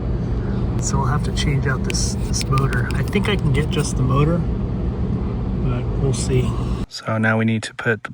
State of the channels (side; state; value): both; identical; correlation 1.00